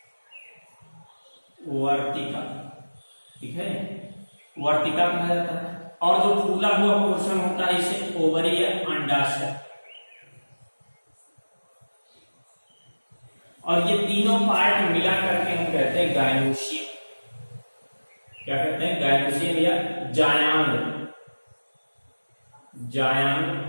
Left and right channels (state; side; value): inverted; both; correlation -1.00